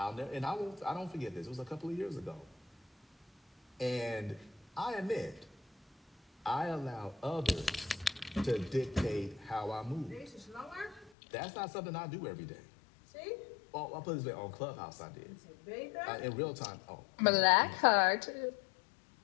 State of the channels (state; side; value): drops out; right; at 11.1 s